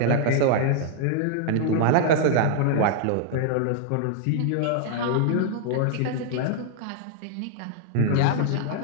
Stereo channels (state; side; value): different; both; correlation -0.01